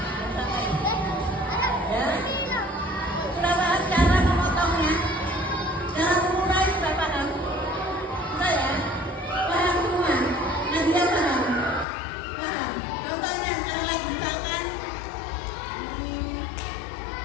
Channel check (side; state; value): right; drops out; at 11.9 s